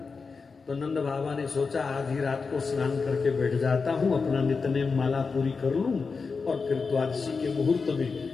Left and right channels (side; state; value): right; quieter; 4.7 dB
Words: तो नंद बाबा ने सोचा आधी रात को स्नान करके बैठ जाता हूं, अपना नित्यनेम माला पूरी कर लूं और फिर द्वादशी के मुहूर्त